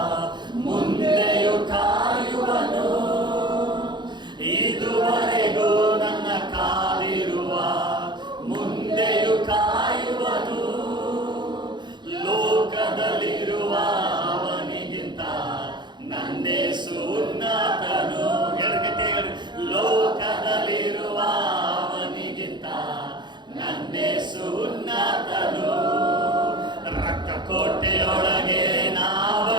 ಮುಂದೆಯೂ ಕಾಯುವನು, ಇದುವರೆಗೂ ನನ್ನ ಕಾದಿರುವ ಮುಂದೆಯೂ ಕಾಯುವನು, ಯೇಸು ಉನ್ನತನು, ರಕ್ತ ಕೋಟೆಯೊಳಗೆ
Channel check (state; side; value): late; left; 0.22 ms